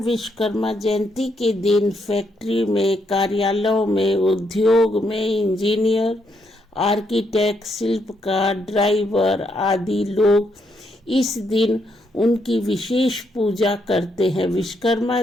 विश्वकर्मा जयंती के दिन फैक्ट्री में, कार्यालयों में, उद्योग में इंजीनियर, आर्किटेक्ट, शिल्पकार, ड्राइवर आदि लोग इस दिन उनकी विशेष पूजा करते हैं।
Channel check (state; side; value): normal; both; correlation 0.77